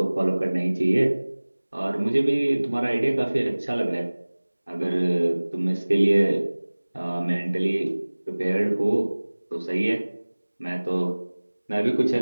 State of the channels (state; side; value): inverted; both; correlation -1.00